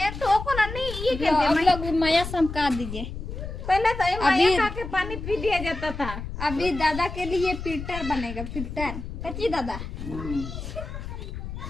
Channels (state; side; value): noise; left; rumble, 8 dB below the sound